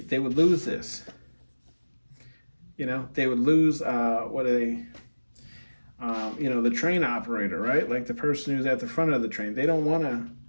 would lose this. They would lose, the train operator, right? Like the person who's at the front of the train. They don't want to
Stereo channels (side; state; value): both; inverted; correlation -1.00